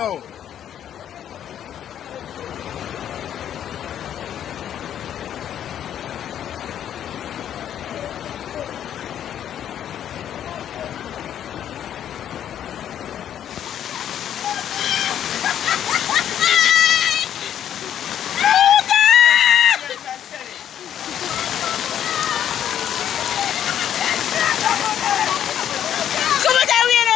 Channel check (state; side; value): quieter; right; 10.1 dB